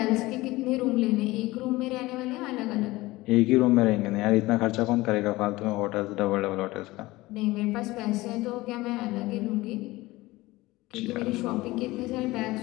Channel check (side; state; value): right; quieter; 19.6 dB